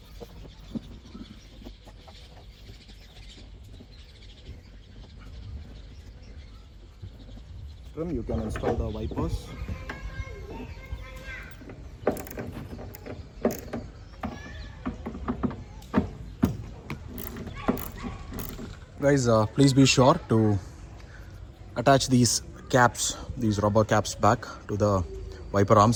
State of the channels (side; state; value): both; identical; correlation 1.00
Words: You can install the wipers. Guys, please be sure to attach these caps, these rubber caps back to the wiper